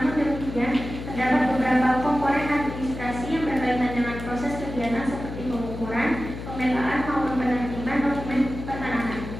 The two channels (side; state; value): left; noise; hum, 9 dB below the sound